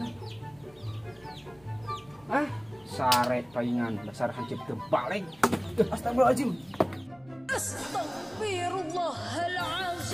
Sare paingan dasar hancip teu balik. Astagfirullahaladzim.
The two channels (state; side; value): noise; right; rumble, 28 dB below the sound